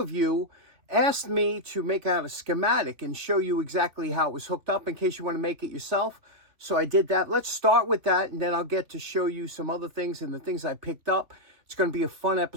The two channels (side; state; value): left; late; 3.1 ms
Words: you asked me to make out a schematic and show you exactly how it was hooked up in case you want to make it yourself. So I did that. Let's start with that, and then I'll get to show you some other things and the things I picked up. It's going to be a fun